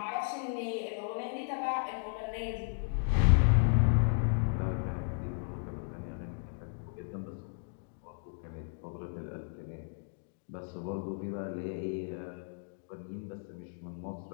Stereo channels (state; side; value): silent; right; digital silence